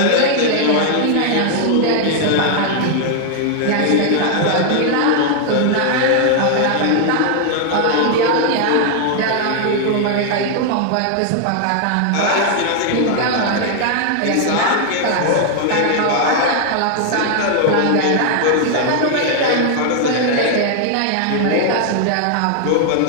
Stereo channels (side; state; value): both; different; correlation 0.00